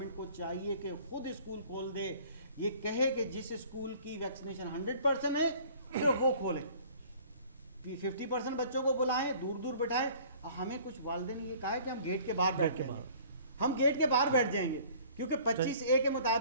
کو چاہیے کہ خود اسکول کھول دے. یہ کہے کہ جس اسکول کی ویکسینیشن 100% ہے صرف وہ کھولیں, 50% بچوں کو بلائیں, دور دور بٹھائیں. ہمیں کچھ والدین نے یہ کہا ہے کہ ہم گیٹ کے باہر بیٹھ جائیں گے, ہم گیٹ کے باہر بیٹھ جائیں گے, کیونکہ 25A کے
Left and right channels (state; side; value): inverted; both; correlation -0.51